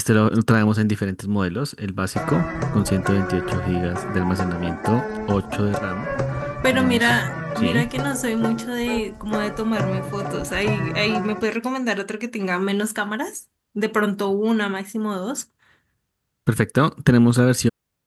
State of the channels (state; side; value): identical; both; correlation 1.00